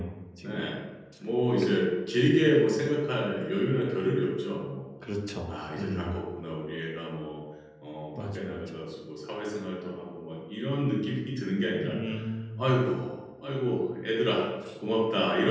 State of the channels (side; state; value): both; identical; correlation 1.00